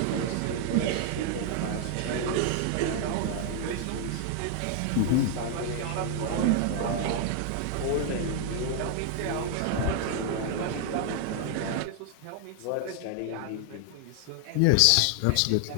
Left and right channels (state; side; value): different; both; correlation 0.00